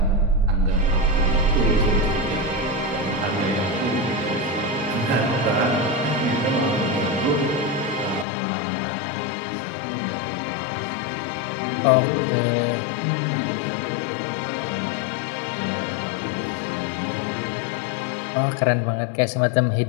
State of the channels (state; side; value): drops out; right; at 8.2 s